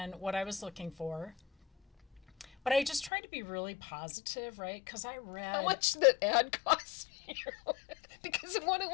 what I was looking for. But I just tried to be really positive, right? Because I read. How much did that ad cost you? Because what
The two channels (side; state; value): right; drops out; at 3.1 s